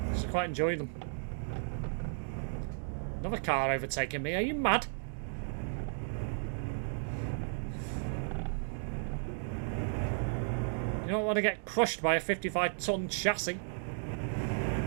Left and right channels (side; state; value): left; silent; digital silence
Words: quite enjoy them. Another car overtaking me, are you mad? You don't want to get crushed by a 55-ton chassis.